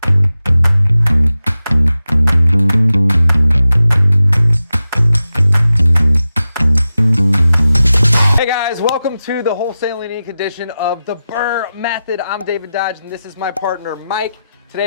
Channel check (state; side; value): inverted; both; correlation -0.93